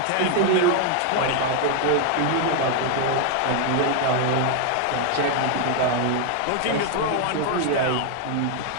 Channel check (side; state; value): both; different; correlation 0.00